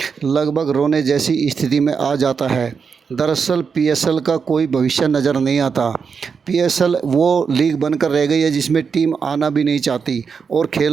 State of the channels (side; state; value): left; quieter; 5.9 dB